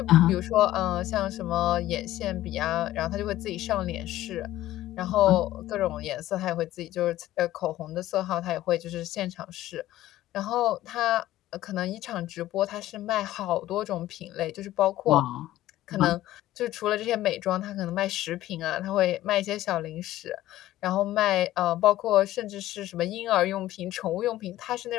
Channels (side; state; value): right; quieter; 14.8 dB